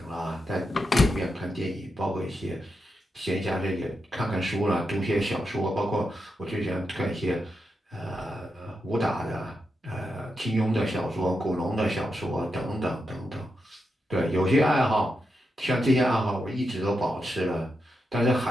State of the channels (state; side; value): normal; both; correlation 0.86